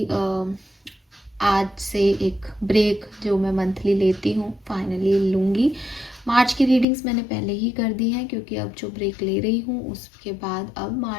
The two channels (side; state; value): right; drops out; at 6.9 s